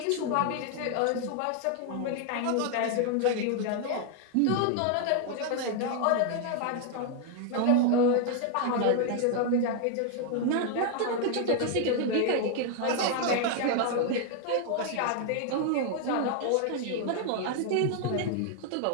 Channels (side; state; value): both; different; correlation 0.00